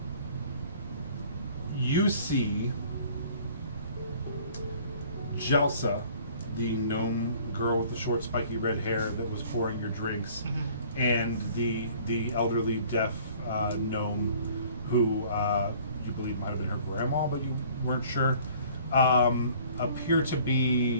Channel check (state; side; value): inverted; both; correlation -0.53